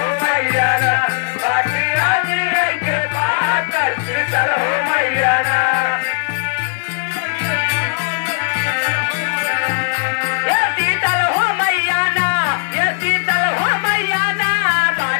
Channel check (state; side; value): silent; right; digital silence